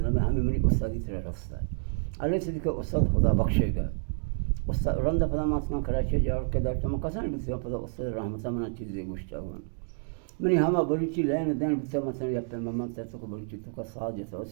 میں ہمیں میری استادی طرح رستا اللہ سے کہ استاد خدا بخشے گا استاد رند فدا ماسکان کراچی جا کے در تم قسم بسیار فدا استاد رحمت من چیزی گوشتا ہوں منی ہما بلوچی لین دین بسیار مثلا یا پہ مما تو کو بلوچی تو کا ساز جیسا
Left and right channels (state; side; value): silent; left; digital silence